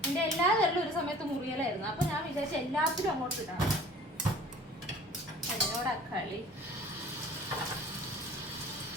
എൻ്റെ എല്ലാ വിരലും ഒരു സമയത്ത് മുറിയലായിരുന്നു. അപ്പം ഞാൻ വിചാരിച്ചു എല്ലാത്തിലും അങ്ങോട്ട് ഇടാം. എന്നോടാ കളി.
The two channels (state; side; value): normal; both; correlation 0.47